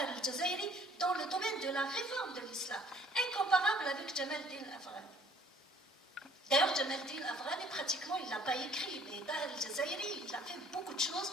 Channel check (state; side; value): normal; both; correlation 0.57